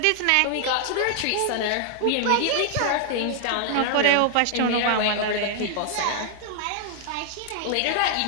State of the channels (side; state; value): both; different; correlation 0.00